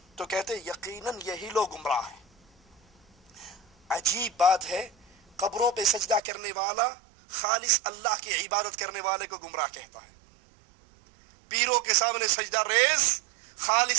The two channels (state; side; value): drops out; left; at 6.2 s